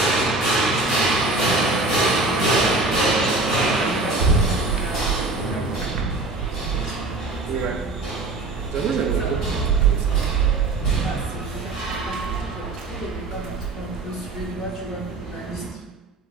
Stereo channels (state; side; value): quieter; left; 3.2 dB